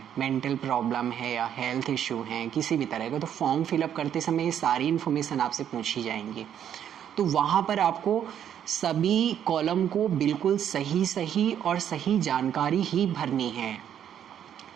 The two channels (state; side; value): quieter; left; 9.6 dB